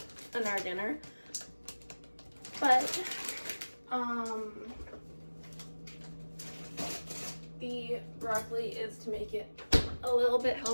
our dinner. But the broccoli is to make it a little bit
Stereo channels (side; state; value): both; inverted; correlation -1.00